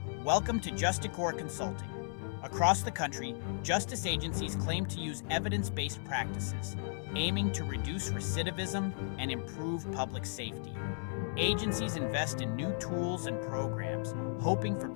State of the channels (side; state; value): right; silent; 54 dB below the other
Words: Welcome to Justicore Consulting. Across the country, justice agencies claim to use evidence-based practices, aiming to reduce recidivism and improve public safety. Agencies invest in new tools and programs, hoping for